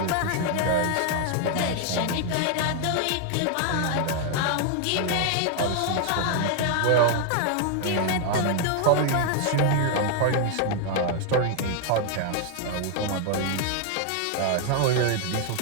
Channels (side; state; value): both; different; correlation 0.00